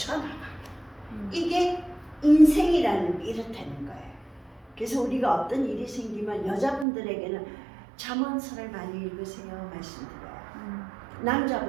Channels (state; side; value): drops out; left; at 6.9 s